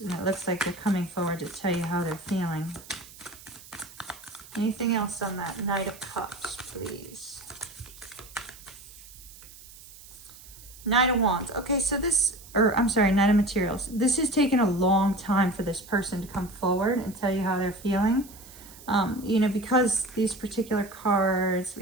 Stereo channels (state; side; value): noise; right; hiss, 19 dB below the sound